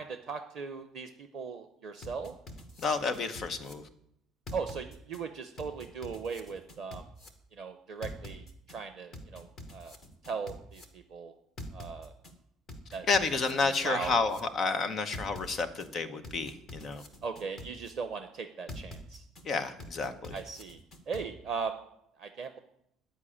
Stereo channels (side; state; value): both; normal; correlation 0.62